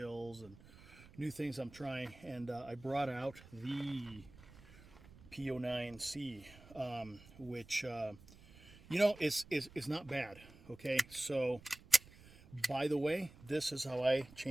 and new things I'm trying. And I brought out the P09C, which is not bad. Okay, so. By the way, this is how I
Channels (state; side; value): noise; right; rumble, 21 dB below the sound